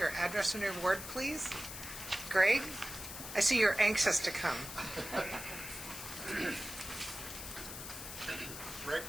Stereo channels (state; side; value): noise; left; hiss, 9 dB below the sound